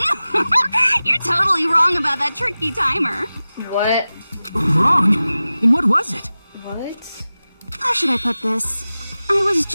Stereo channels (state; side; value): inverted; both; correlation -0.96